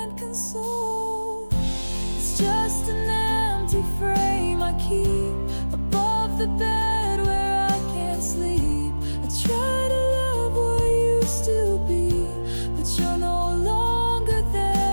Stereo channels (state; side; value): inverted; both; correlation -1.00